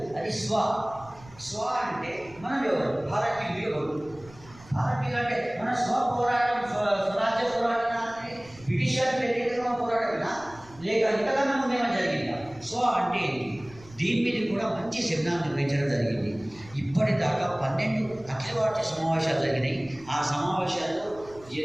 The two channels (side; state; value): right; noise; rumble, 22 dB below the sound